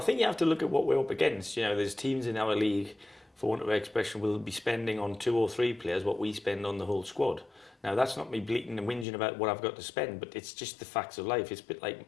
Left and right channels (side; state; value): right; drops out; at 9.1 s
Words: I think you have to look at what we're up against. You know, there's teams in our league, for want of an expression, will be spending on 2 or 3 players what we spend on the whole squad. Now, that's not me bleating and whinging about what I've got to spend, but it's just the facts of life. It's a bit like